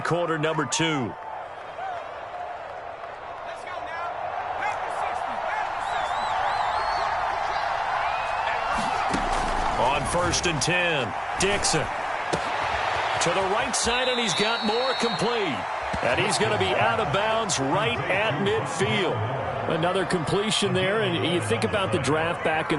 quarter number 2. On 1st and 10, Dixon. To the right side, and he's got more complete. And he's going to be out of bounds right at midfield. Another completion there, and you think about the draft back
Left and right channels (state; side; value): identical; both; correlation 1.00